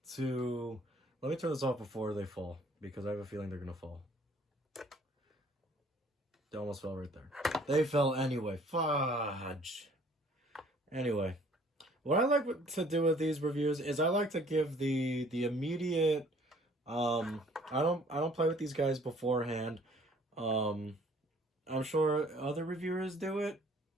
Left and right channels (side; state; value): both; normal; correlation 0.56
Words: to... Let me turn this off before they fall, because I have a feeling they're going to fall. They almost fell right there. They fell anyway. Fudge. Anyway, what I like to do with these reviews is I like to give the immediate... I don't play with these guys beforehand. I'm sure other reviewers do it